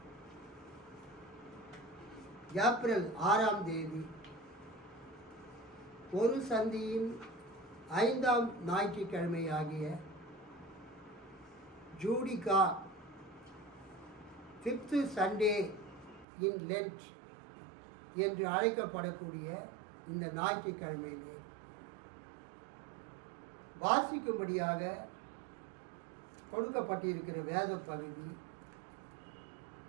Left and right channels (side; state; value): left; drops out; at 16.2 s